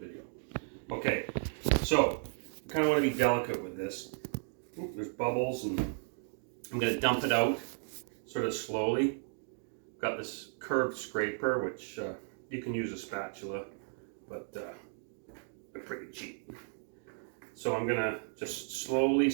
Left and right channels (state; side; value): silent; left; 55 dB below the other